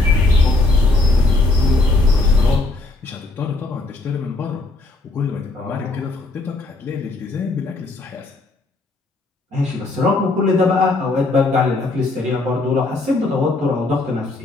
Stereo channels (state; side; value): quieter; right; 3.0 dB